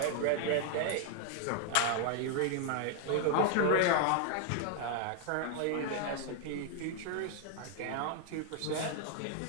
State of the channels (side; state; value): both; different; correlation 0.01